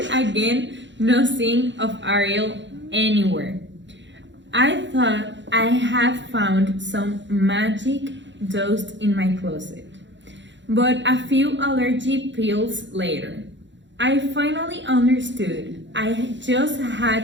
again, no sign of Ariel anywhere. I thought I had found some magic dust in my closet. but a few allergy pills later, I finally understood. I just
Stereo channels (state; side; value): late; left; 0.53 ms